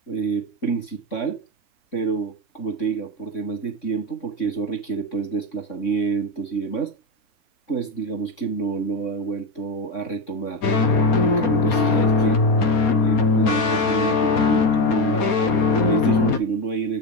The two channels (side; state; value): right; late; 4.3 ms